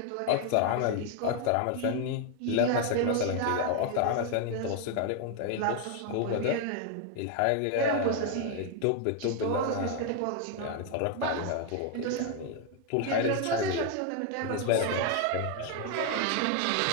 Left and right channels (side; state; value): both; different; correlation 0.01